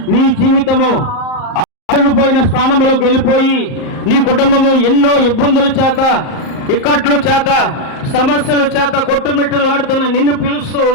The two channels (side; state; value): right; late; 38 ms